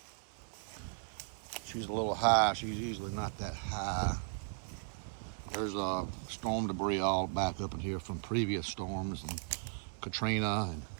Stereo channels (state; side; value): silent; left; 53 dB below the other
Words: She's a little high. She's usually not that high. There's storm debris all back up in here from previous storms and Katrina and